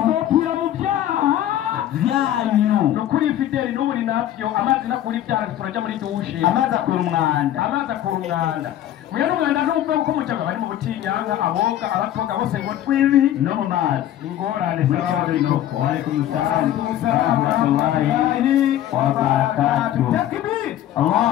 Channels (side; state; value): right; quieter; 12.1 dB